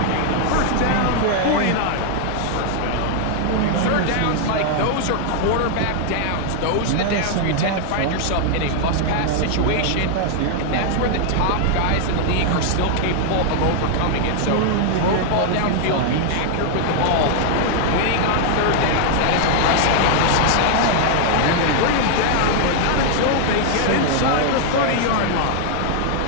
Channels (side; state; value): both; different; correlation 0.00